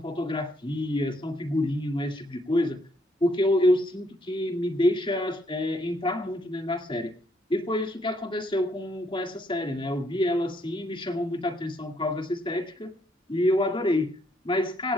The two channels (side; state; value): both; normal; correlation 0.71